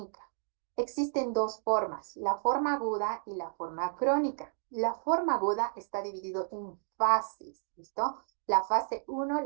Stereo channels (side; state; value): left; silent; digital silence